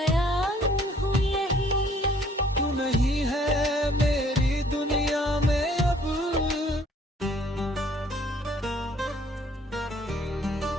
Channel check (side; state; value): both; normal; correlation 0.60